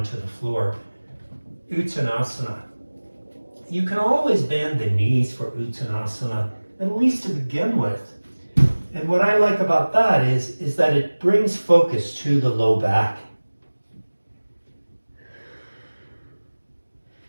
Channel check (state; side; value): inverted; both; correlation -1.00